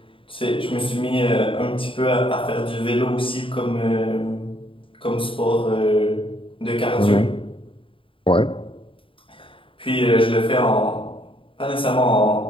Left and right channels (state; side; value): late; right; 0.25 ms